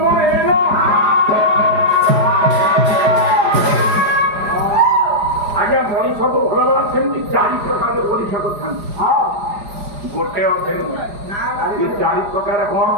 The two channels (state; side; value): late; left; 4.9 ms